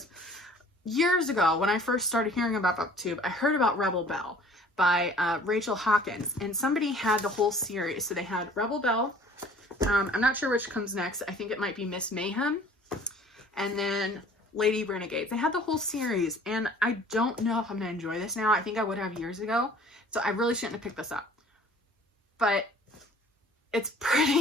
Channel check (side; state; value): both; normal; correlation 0.51